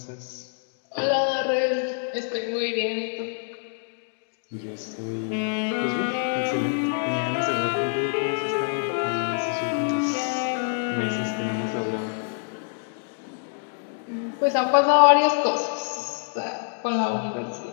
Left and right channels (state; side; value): silent; right; digital silence